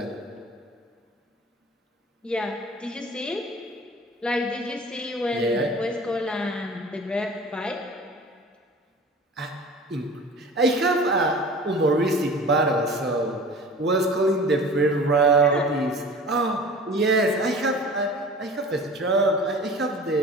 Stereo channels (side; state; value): both; normal; correlation 0.41